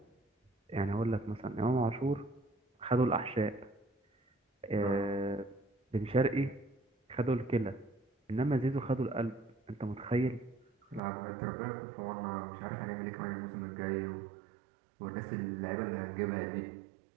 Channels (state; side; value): drops out; left; at 11.0 s